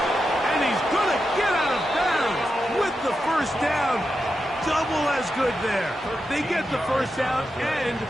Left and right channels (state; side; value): normal; both; correlation 0.88